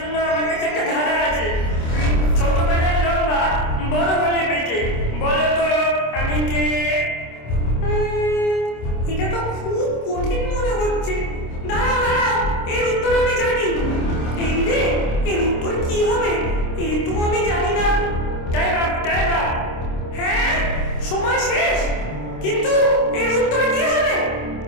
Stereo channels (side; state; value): right; late; 26 ms